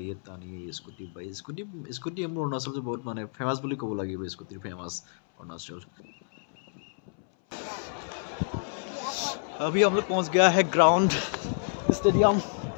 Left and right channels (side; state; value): right; silent; 59 dB below the other